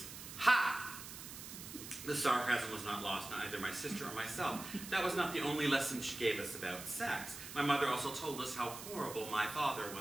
ha! The sarcasm was not lost on either my sister or myself. That was not the only lesson she gave us about sex. My mother also told us how horrible my father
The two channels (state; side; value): noise; right; hiss, 11 dB below the sound